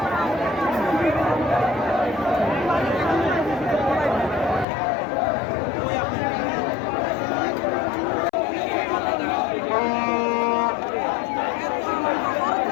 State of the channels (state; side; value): drops out; right; at 4.7 s